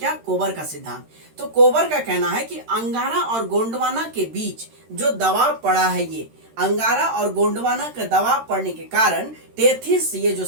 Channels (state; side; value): late; left; 13 ms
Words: कोबर का सिद्धांत। तो कोबर का कहना है कि अंगारा और गोंडवाना के बीच जो दबाव पड़ा है, ये अंगारा और गोंडवाना का दबाव पड़ने के कारण टेथिस, ये जो